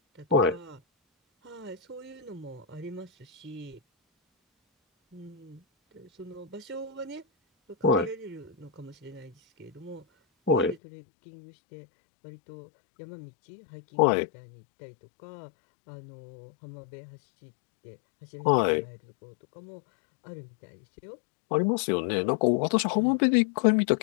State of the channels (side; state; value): right; drops out; at 10.8 s